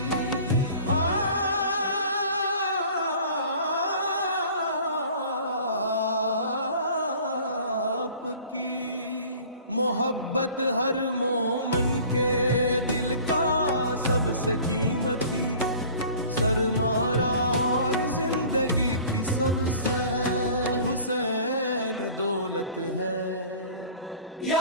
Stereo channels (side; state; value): both; inverted; correlation -0.46